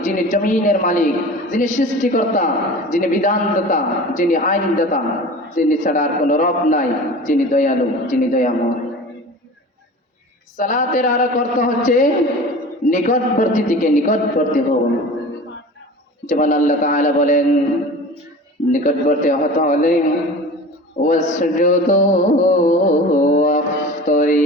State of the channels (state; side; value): normal; both; correlation 0.37